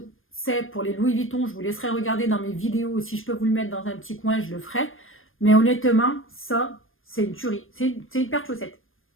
c'est pour les Louis Vuitton, je vous laisserai regarder dans mes vidéos. Si je peux vous le mettre dans un petit coin, je le ferai. Mais honnêtement, ça, c'est une tuerie. C'est une paire de chaussettes.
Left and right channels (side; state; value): right; late; 0.59 ms